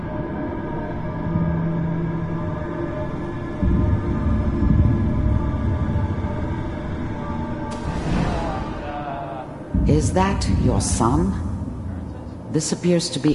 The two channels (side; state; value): both; identical; correlation 1.00